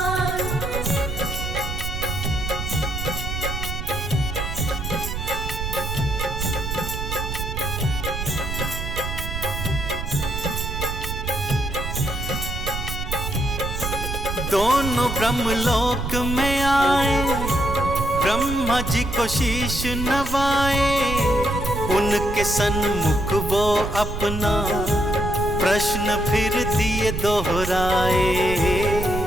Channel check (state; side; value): noise; right; rumble, 5 dB below the sound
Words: दोनों ब्रह्मलोक में आए, ब्रह्मा जी को शीश नवाए, उनके सन्मुख वो अपना प्रश्न फिर दिए दोहराए।